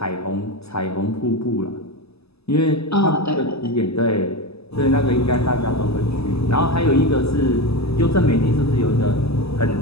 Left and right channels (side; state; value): right; late; 0.79 ms